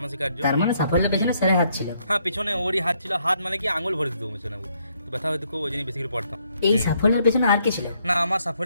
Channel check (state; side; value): inverted; both; correlation -0.72